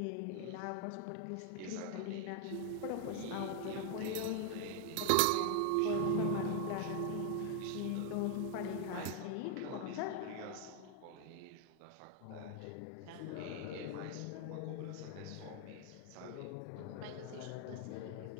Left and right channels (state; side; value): different; both; correlation 0.00